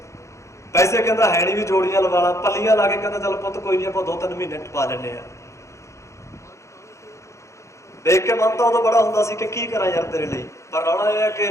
ਪੈਸੇ ਕਹਿੰਦਾ ਹੈ ਨਹੀਂ ਵੀ ਜੋੜੀਆਂ ਲਵਾ ਲਾ, ਪੱਲੀਆਂ ਲਾ ਕੇ ਕਹਿੰਦਾ ਚੱਲ ਪੁੱਤ ਕੋਈ ਨਹੀਂ ਆਪਾਂ 2-3 ਮਹੀਨੇ ਟਪਾ ਲੈਂਦੇ ਆ। ਦੇਖ ਕੇ ਮਨ ਤਾਂ ਉਦੋਂ ਬੜਾ ਹੁੰਦਾ ਸੀ ਕਿ ਕੀ ਕਰਾਂ ਯਾਰ ਤੇਰੇ ਲਈ, ਪਰ ਰੌਲਾ ਇਹ ਹੈ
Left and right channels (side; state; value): right; late; 0.14 ms